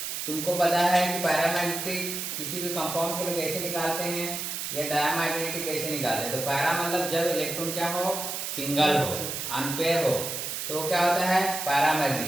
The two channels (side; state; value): right; noise; hiss, 4 dB below the sound